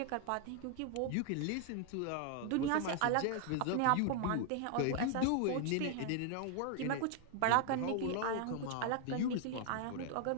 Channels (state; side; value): different; both; correlation 0.00